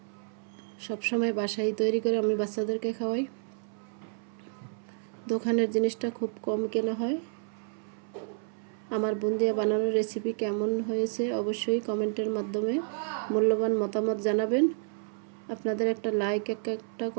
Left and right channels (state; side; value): silent; left; 58 dB below the other